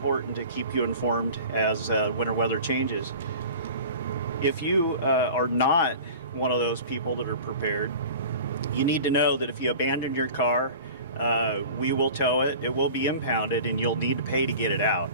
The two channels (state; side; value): inverted; both; correlation -0.39